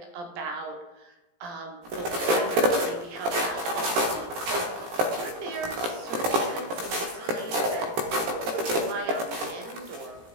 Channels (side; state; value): left; late; 17 ms